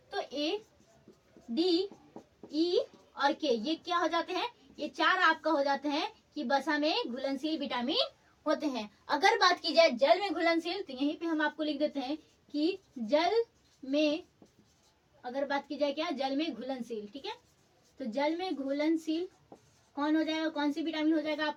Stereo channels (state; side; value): identical; both; correlation 1.00